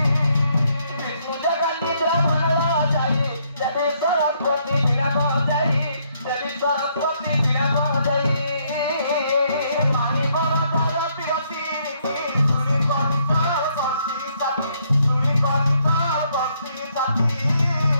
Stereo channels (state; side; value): inverted; both; correlation -0.71